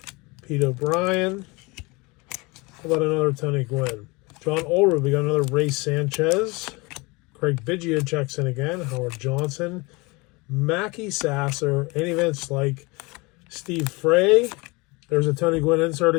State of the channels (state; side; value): quieter; right; 25.8 dB